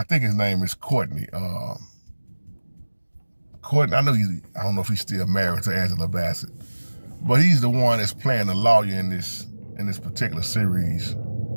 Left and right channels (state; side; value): inverted; both; correlation -1.00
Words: think his name is Courtney. Courtney, I don't know if he's still married to Angela Bassett, but he's the one that's playing the lawyer in this particular series